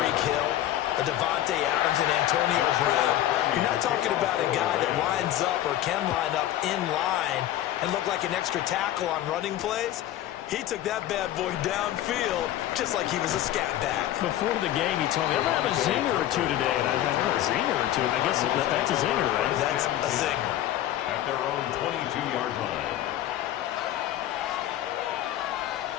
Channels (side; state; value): right; quieter; 13.1 dB